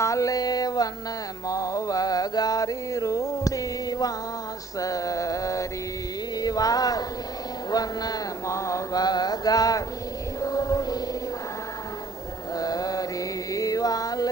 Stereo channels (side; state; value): left; quieter; 3.4 dB